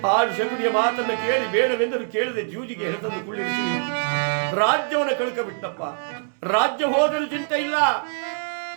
ಆ ಶಕುನಿಯ ಮಾತನ್ನು ಕೇಳಿ ಬೇಡವೆಂದರೂ ಕೇಳದೆ ಜೂಜಿಗೆ ಹೆಳೆತಂದು ಕುಳ್ಳಿರಿಸಿ ರಾಜ್ಯವನ್ನು ಕಳ್ಕಬಿಟ್ಟಪ್ಪ. ರಾಜ್ಯ ಹೋದರೂ ಚಿಂತೆ ಇಲ್ಲ,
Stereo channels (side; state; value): left; silent; digital silence